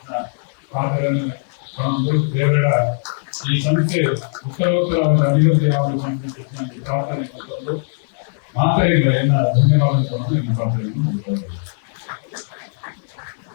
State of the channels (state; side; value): silent; right; 62 dB below the other